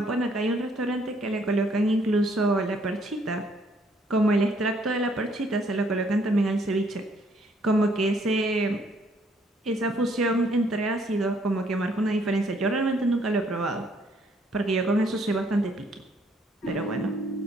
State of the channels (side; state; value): both; normal; correlation 0.66